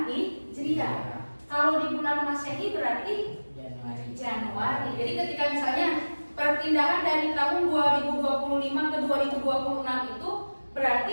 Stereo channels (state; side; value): inverted; both; correlation -1.00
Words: Hijriah. Kalau di bulan Masehi berarti Januari. Jadi ketika misalnya perpindahan dari tahun 2025 ke 2026 itu berarti